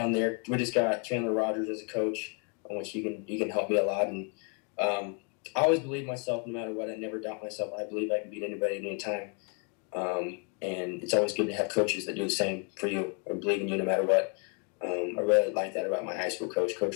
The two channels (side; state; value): right; quieter; 37.5 dB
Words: there. We just got Chandler Rogers as a coach, on which he can help me a lot. And I always believe myself, no matter what. I never doubt myself. I believe I can beat anybody at any time. And it's always good to have coaches that do the same for you or believe in you no matter what. I really like that about my high school coach,